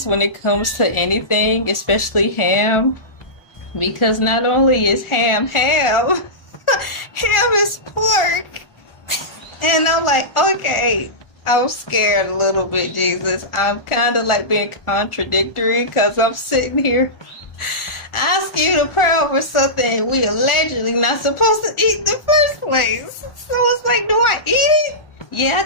when it comes to anything, especially ham, because not only is ham ham is pork. And I'm like, okay, I'm scared a little bit, Jesus. I'm kind of like being contradictory because I'm sitting here asking you to pray over something we allegedly not supposed to eat in the first place. So it's like, do I eat it? Yeah,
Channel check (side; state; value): right; late; 1.4 ms